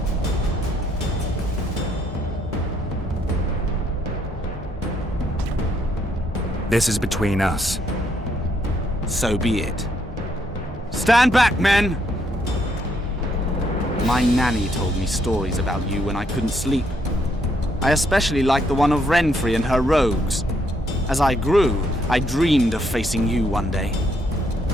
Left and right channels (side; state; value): both; normal; correlation 0.73